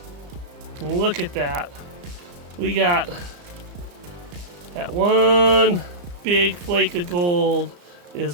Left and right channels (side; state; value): left; late; 34 ms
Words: And look at that. We got that one big flake of gold is